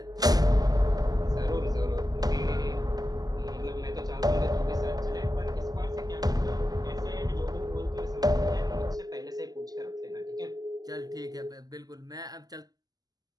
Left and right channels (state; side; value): late; left; 0.18 ms